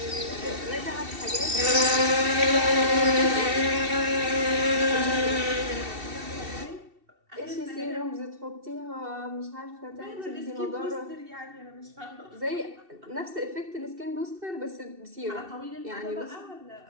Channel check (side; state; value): left; late; 2.7 ms